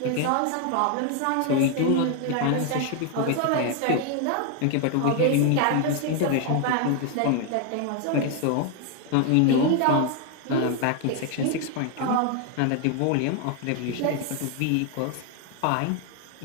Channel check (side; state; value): both; different; correlation 0.01